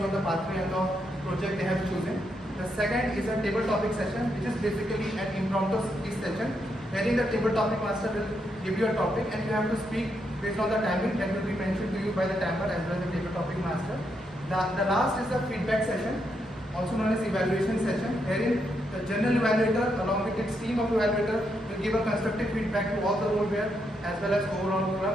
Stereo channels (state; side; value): normal; both; correlation 0.80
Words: on the pathway and the project they have chosen. The second is a table topic session, which is basically an impromptu speech session, wherein the table topic master will give you a topic and you have to speak based on the timing that will be mentioned to you by the timer as well as the table topic master. The last is the feedback session, also known as evaluation session, wherein the general evaluator along with its team of evaluator will give a constructive feedback to all the role wear as well as overall